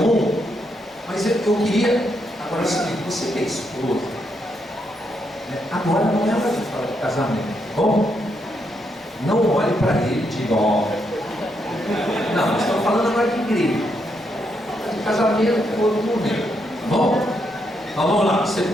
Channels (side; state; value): both; normal; correlation 0.79